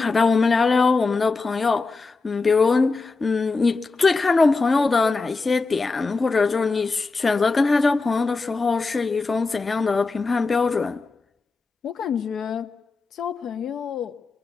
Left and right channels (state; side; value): quieter; right; 3.9 dB